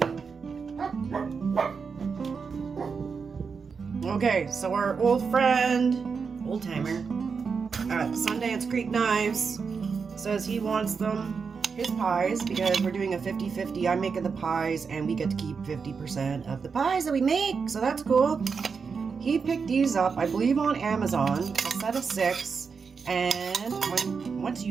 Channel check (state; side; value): quieter; left; 5.5 dB